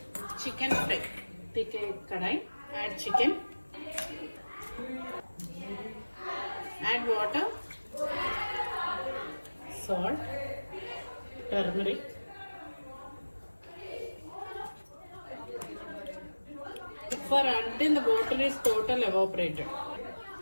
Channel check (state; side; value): inverted; both; correlation -1.00